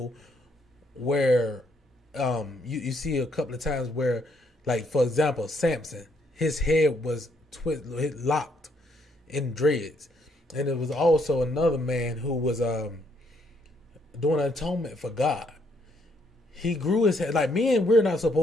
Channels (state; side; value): normal; both; correlation 0.71